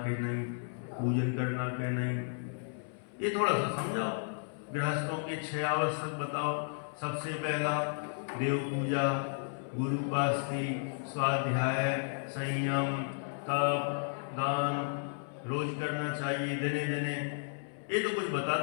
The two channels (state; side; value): silent; right; 55 dB below the other